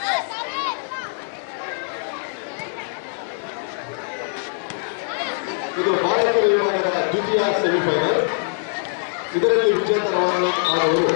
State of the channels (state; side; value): silent; right; digital silence